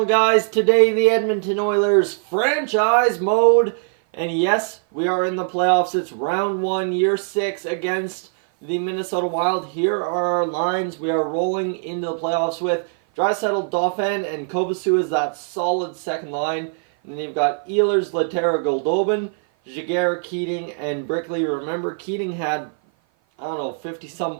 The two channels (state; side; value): silent; left; 55 dB below the other